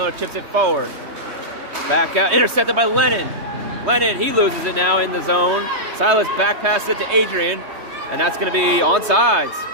chips it forward. Back out, intercepted by Lennon. Lennon, he loses it now in the zone. Silas back passes it to Adrian, and that's going to be onside.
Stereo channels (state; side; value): late; left; 3.2 ms